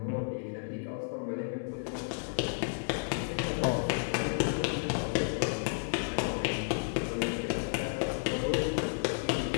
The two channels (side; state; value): right; silent; 56 dB below the other